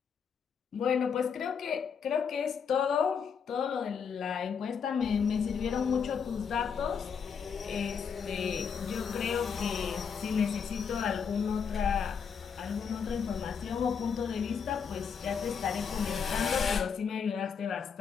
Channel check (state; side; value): quieter; right; 6.6 dB